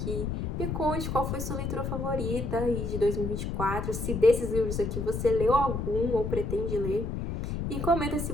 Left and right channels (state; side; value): noise; left; rumble, 3 dB below the sound